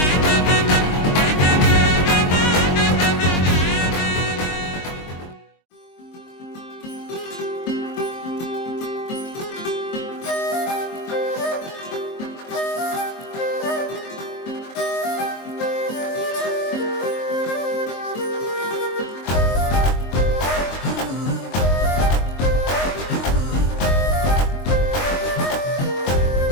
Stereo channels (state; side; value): late; right; 23 ms